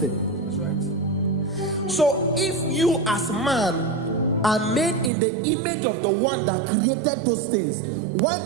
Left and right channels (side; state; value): left; drops out; at 5.1 s